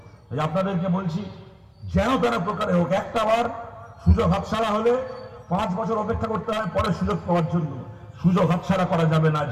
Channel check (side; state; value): both; identical; correlation 1.00